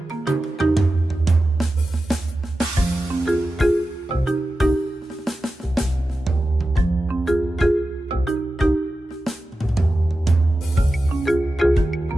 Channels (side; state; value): both; normal; correlation 0.93